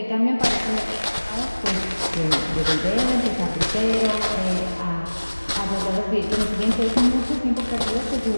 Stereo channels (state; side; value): inverted; both; correlation -1.00